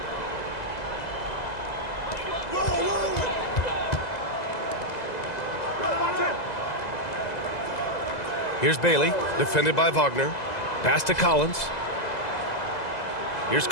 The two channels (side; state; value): right; late; 2.0 ms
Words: Here's Bailey, defended by Wagner. Pass to Collins. Here's